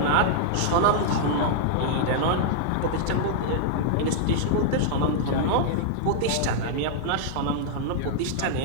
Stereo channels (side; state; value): both; different; correlation -0.01